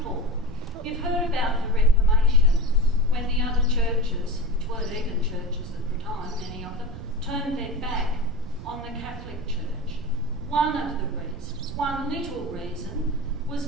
You've heard about the Reformation, when the other churches, which weren't even churches at the time, many of them, turned their back on the Catholic Church. One of the reasons, one little reason, was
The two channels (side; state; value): right; noise; rumble, 11 dB below the sound